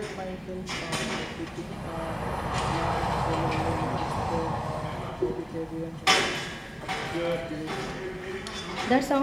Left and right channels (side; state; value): both; identical; correlation 1.00